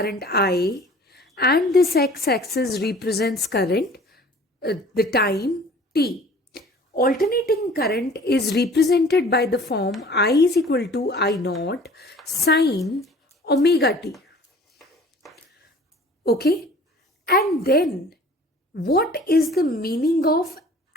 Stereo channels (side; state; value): both; normal; correlation 0.48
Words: I and this x-axis represents current, the time t. Alternating current is represented by the form I is equal to I naught sine omega t. Okay? And then what is the meaning of